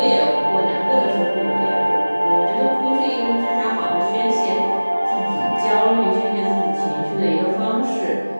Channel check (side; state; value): both; inverted; correlation -1.00